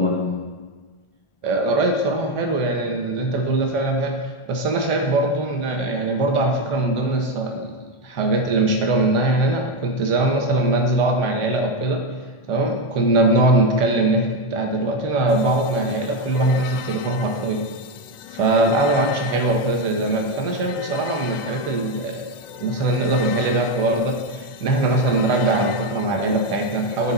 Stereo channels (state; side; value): late; right; 1.4 ms